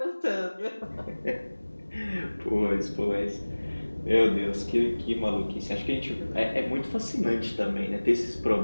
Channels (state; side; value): inverted; both; correlation -1.00